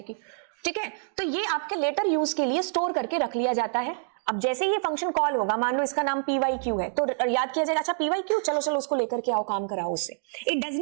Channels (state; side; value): silent; left; digital silence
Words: ठीक है, तो ये आपके लेटर यूज के लिए स्टोर करके रख लिया जाता है। अब जैसे ये फंक्शन कॉल होगा, मान लो इसका नाम pyq है, तो याद किया जाएगा अच्छा pyq, चलो उसको लेकर के आओ, काम कराओ उससे। It does